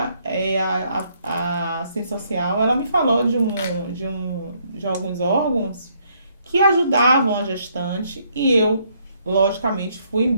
a assistência social, ela me falou de alguns órgãos que ajudavam a gestante e eu, logicamente, fui em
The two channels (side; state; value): both; inverted; correlation -0.70